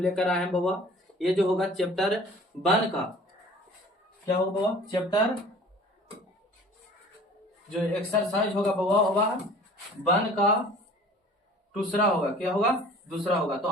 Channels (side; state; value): both; normal; correlation 0.47